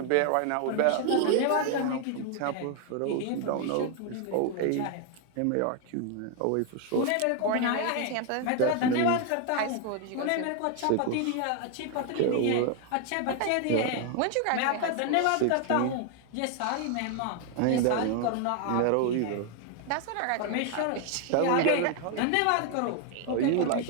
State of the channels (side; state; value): both; different; correlation 0.00